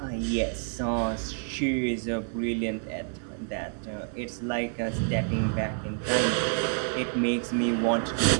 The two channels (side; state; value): left; silent; 57 dB below the other